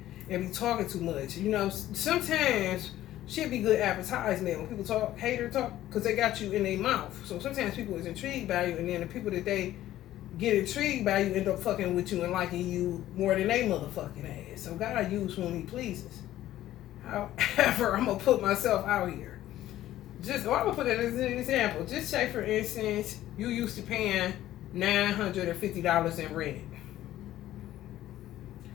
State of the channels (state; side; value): quieter; right; 13.8 dB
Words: and be talking too much. You know, sometimes shit be good advertisement when people talk, hater talk, because they got you in their mouth. So sometimes people is intrigued by you, and then the people that they get intrigued by you end up fucking with you and liking you more than they motherfucking ass. So God uses whom he pleases. However, I'm going to put myself out here. I'm going to put it as an example. Just say, for instance, you used to paying $950 in rent.